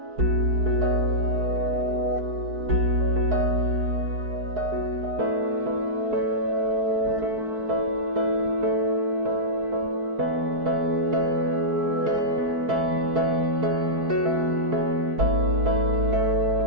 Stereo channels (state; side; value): late; left; 4.6 ms